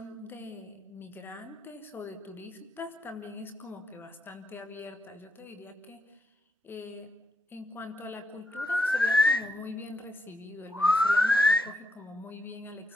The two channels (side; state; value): both; normal; correlation 0.80